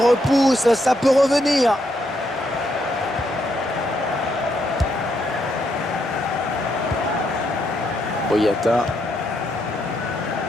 ça peut revenir. Boyata.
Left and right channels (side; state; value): both; normal; correlation 0.77